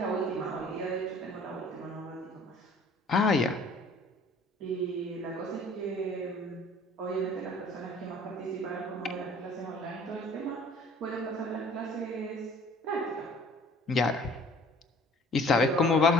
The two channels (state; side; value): normal; both; correlation 0.52